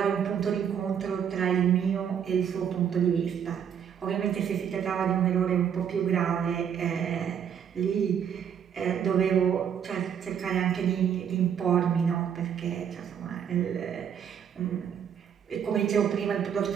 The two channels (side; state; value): left; quieter; 8.3 dB